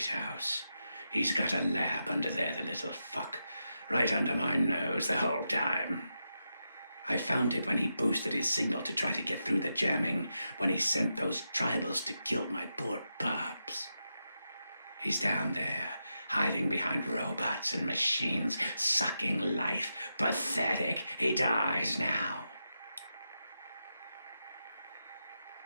He's got a lab under there, the little fuck. Right under my nose the whole time. I found it when he boosted his signal to try to get through the jamming, when he sent those tribals to kill my poor pups. He's down there, hiding behind robots and machines, sucking life. Pathetic. He dies now.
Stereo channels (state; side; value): inverted; both; correlation -0.87